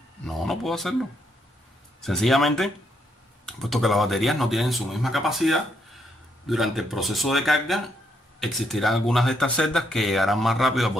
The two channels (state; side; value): normal; both; correlation 0.76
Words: No, no puedo hacerlo. Sencillamente, puesto que las baterías no tienen su misma capacidad, durante el proceso de carga existirán algunas de estas celdas que llegarán más rápido al